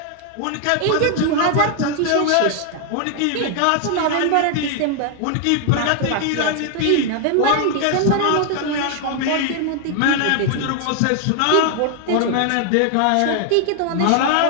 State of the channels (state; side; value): different; both; correlation 0.00